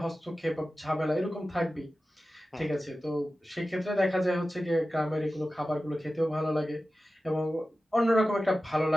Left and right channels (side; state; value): both; normal; correlation 0.94